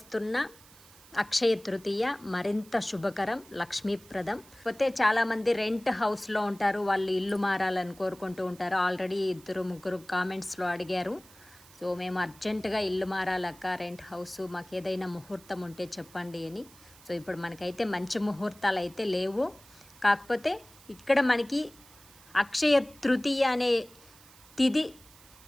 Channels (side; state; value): right; noise; hiss, 23 dB below the sound